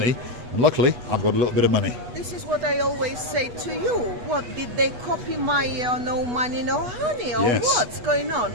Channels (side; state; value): left; late; 8.2 ms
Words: and luckily I've got a little bit of money. This is what I always say to you. What, did they copy my no money, no honey, or Yes. what's going on?